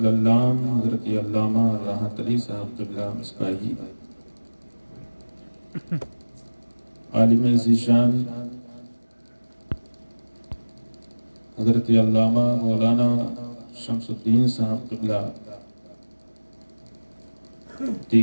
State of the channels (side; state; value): both; inverted; correlation -1.00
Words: حضرت علامہ راحت علی صاحب قبلہ مصباحی، عالم ذیشان حضرت علامہ مولانا شمس الدین صاحب قبلہ،